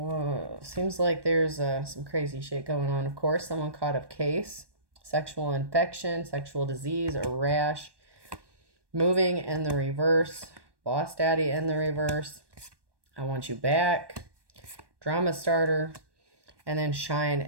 seems like there's some crazy shit going on. Of course, someone caught a case. Sexual infection, sexual disease, or rash, moving in the reverse, boss daddy in the reverse, I want you back, drama starter, and then shine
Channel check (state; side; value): late; left; 1.2 ms